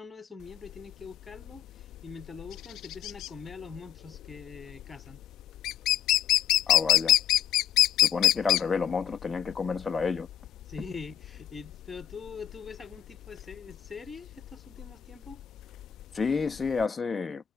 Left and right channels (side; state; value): right; quieter; 9.7 dB